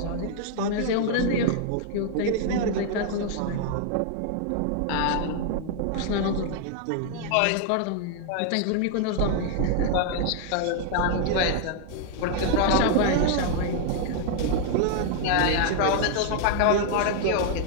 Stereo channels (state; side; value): different; both; correlation 0.00